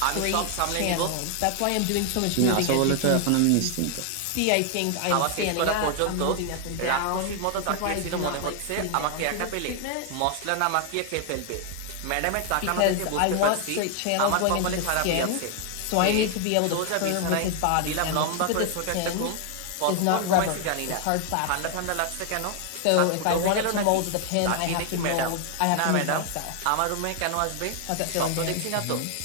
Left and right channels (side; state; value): both; different; correlation 0.00